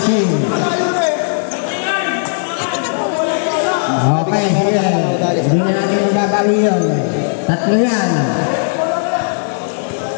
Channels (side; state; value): right; silent; digital silence